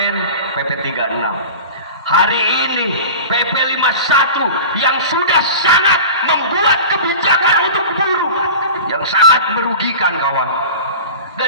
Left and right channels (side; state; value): both; inverted; correlation -0.34